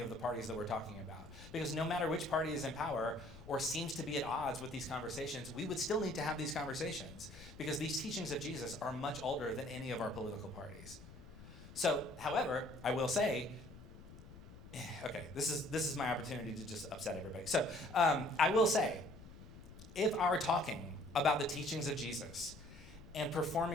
the parties that we're talking about. Because no matter which party is in power or seems to be at odds with these conversations, we would still need to have these conversations because these teachings of Jesus are much older than any of our political parties. So, however, I will say, okay, this is my opportunity to just upset everybody. So, I will say, if our talking about the teachings of Jesus and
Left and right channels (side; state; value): left; noise; rumble, 17 dB below the sound